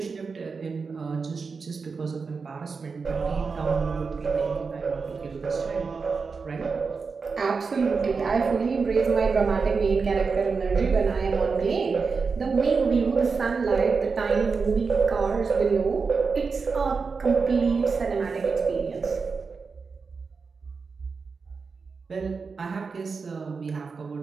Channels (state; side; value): quieter; left; 4.9 dB